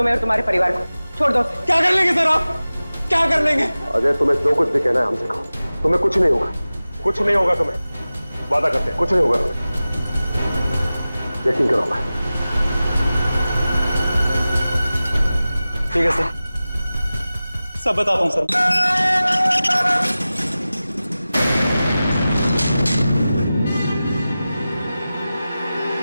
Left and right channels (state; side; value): inverted; both; correlation -0.96